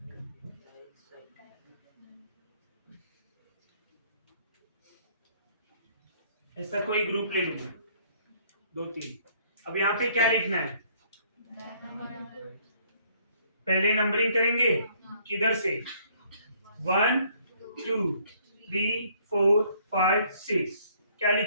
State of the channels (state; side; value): inverted; both; correlation -0.63